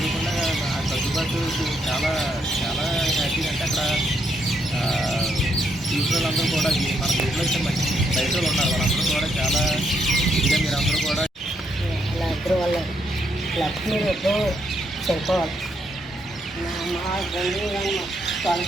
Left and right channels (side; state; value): both; normal; correlation 0.76